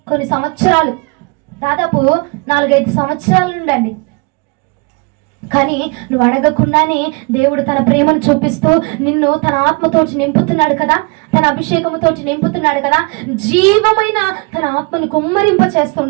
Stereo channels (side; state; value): left; quieter; 30.5 dB